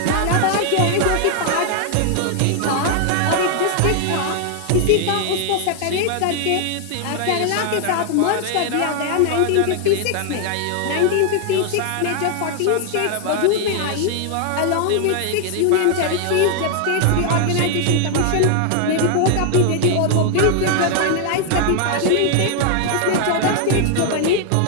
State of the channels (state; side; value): different; both; correlation 0.00